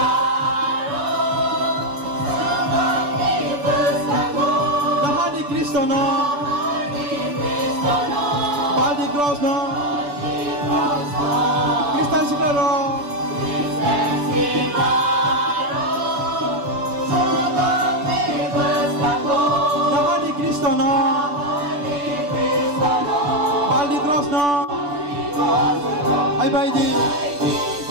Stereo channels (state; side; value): late; left; 6.9 ms